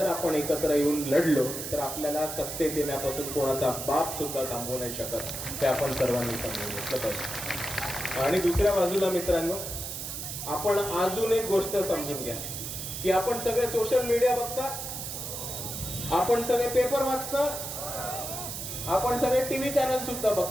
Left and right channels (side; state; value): right; noise; hiss, 6 dB below the sound